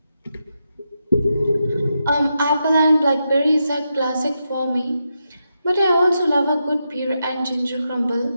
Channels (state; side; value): inverted; both; correlation -0.85